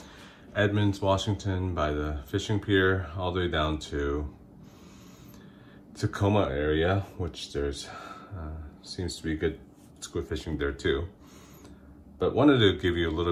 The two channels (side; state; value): both; identical; correlation 1.00